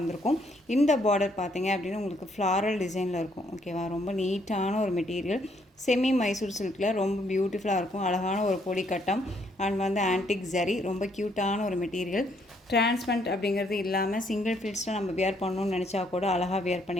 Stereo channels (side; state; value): both; normal; correlation 0.70